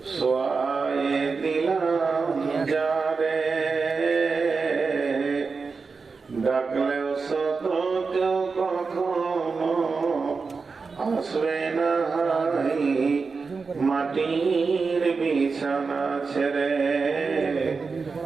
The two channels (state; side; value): quieter; left; 4.7 dB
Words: শোয়ায়ে দিলাম যারে, ডাকলেও শত কেউ কখনো আসবে না মাটির বিছানা ছেড়ে,